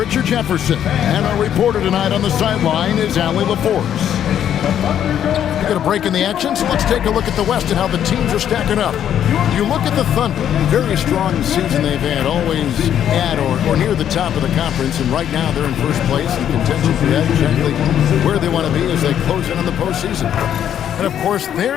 Jefferson. And our reporter tonight on the sideline is Allie LaForce. We're going to break in the action, so let's take a look at the West and how the teams are stacking up. You look at the Thunder, very strong season they've had, always at or near the top of the conference, and right now they're in first place in contention for that, exactly where they want to be as they close in on the postseason. And of course,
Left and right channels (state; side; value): quieter; right; 9.9 dB